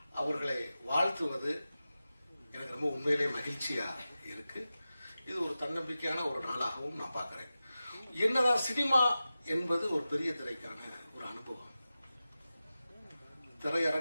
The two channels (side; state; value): both; inverted; correlation -0.94